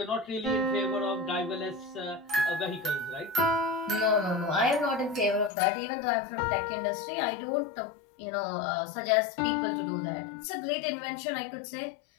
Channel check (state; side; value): drops out; right; at 5.5 s